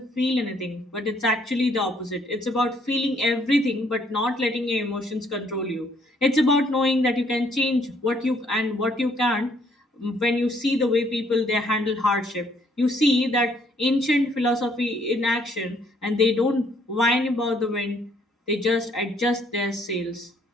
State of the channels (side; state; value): both; normal; correlation 0.66